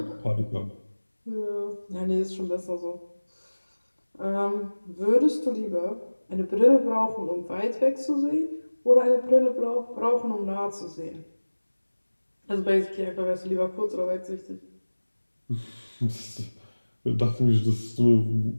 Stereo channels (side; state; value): both; inverted; correlation -1.00